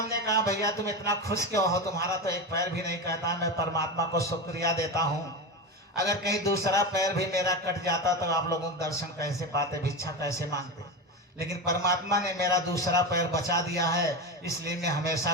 कहा भैया तुम इतना खुश क्यों हो, तुम्हारा तो एक पैर भी नहीं कहता। मैं परमात्मा को शुक्रिया देता हूँ, अगर कहीं दूसरा पैर भी मेरा कट जाता तो आप लोगों को दर्शन कैसे पाते, भिक्षा कैसे मांगते। लेकिन परमात्मा ने मेरा दूसरा पैर बचा दिया है, इसलिए मैं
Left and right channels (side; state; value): both; normal; correlation 0.20